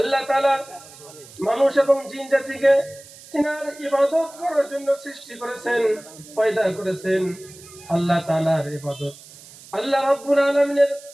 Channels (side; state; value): right; noise; hiss, 20 dB below the sound